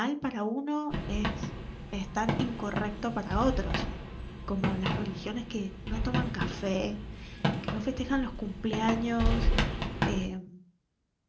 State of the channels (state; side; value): identical; both; correlation 1.00